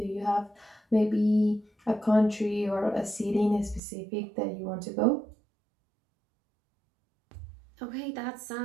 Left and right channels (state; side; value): drops out; left; at 3.8 s